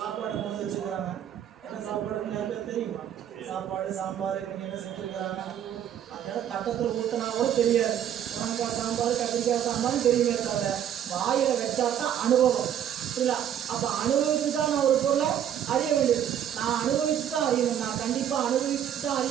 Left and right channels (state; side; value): quieter; left; 9.8 dB